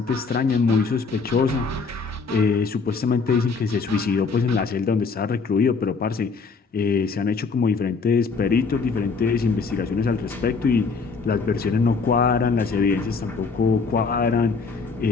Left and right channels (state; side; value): quieter; right; 4.7 dB